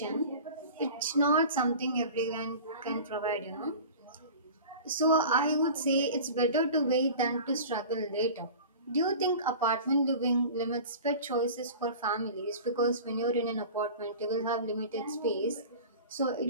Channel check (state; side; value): inverted; both; correlation -0.38